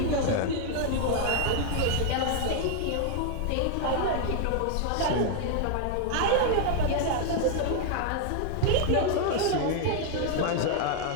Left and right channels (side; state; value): both; different; correlation 0.00